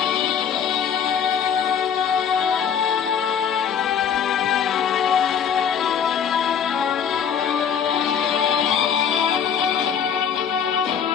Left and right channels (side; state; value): right; quieter; 7.7 dB